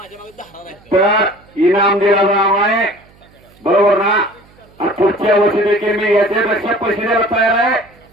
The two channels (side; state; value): right; noise; hum, 29 dB below the sound